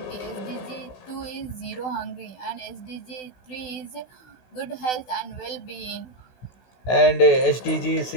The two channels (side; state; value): right; late; 16 ms